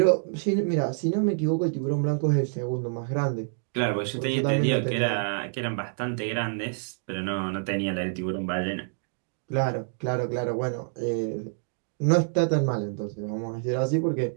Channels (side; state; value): left; silent; digital silence